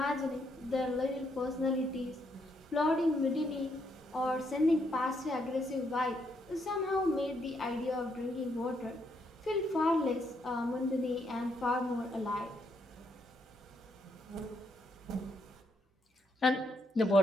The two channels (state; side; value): normal; both; correlation 0.76